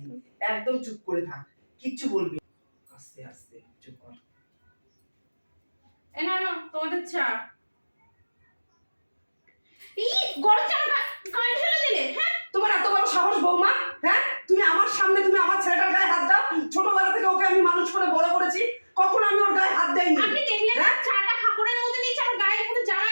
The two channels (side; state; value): both; inverted; correlation -1.00